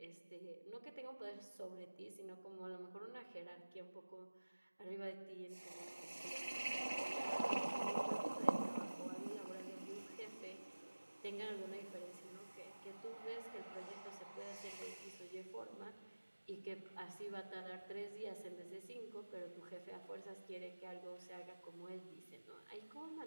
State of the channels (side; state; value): both; inverted; correlation -1.00